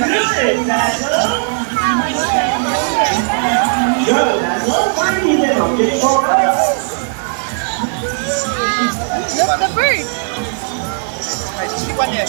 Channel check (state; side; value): silent; left; 69 dB below the other